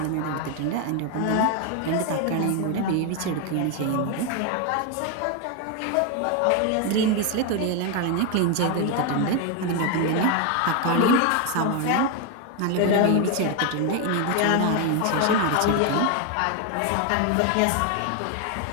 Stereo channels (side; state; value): both; different; correlation 0.01